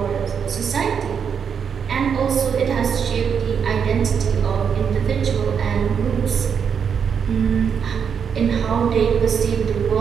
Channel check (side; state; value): left; quieter; 7.1 dB